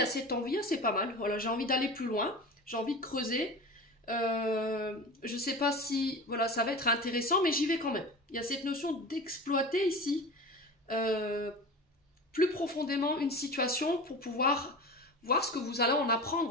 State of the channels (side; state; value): both; normal; correlation 0.32